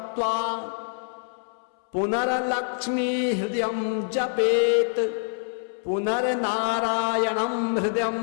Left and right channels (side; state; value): right; silent; 61 dB below the other